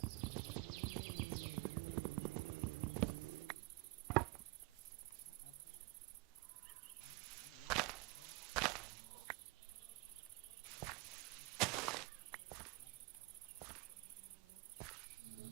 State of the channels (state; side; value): quieter; left; 24.0 dB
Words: That was rude. Can I have that? Can I really not have that?